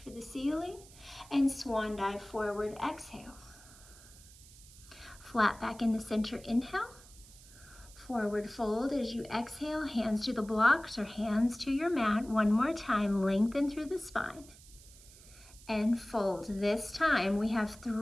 for the ceiling, and swan dive forward, exhale. Flat back in the center, inhale. Forward fold as you exhale, hands to the blocks or hands to your mat. One more time, lengthen through the spine. And fold. This time we have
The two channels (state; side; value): noise; right; hiss, 21 dB below the sound